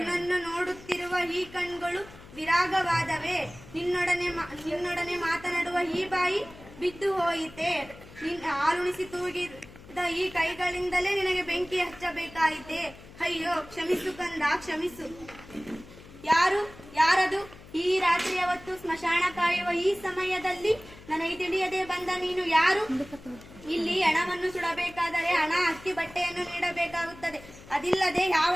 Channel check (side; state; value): left; noise; hum, 19 dB below the sound